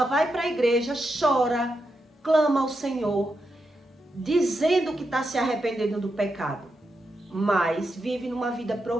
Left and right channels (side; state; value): both; normal; correlation 0.85